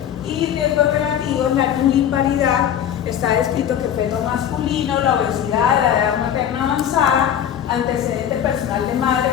Y riesgos relativos, la nuliparidad. Está descrito que feto masculino, la obesidad, la edad materna avanzada, antecedente personal de madre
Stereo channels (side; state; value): right; quieter; 9.7 dB